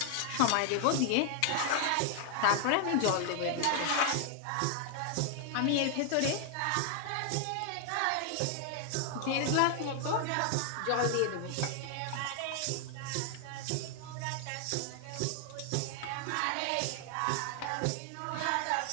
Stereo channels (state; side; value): different; both; correlation 0.00